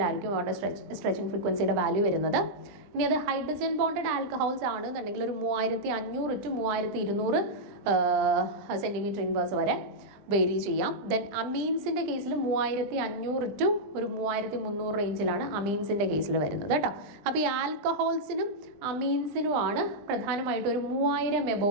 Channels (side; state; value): left; late; 20 ms